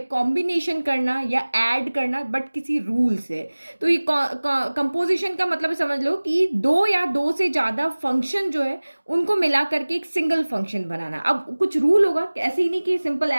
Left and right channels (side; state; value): both; inverted; correlation -1.00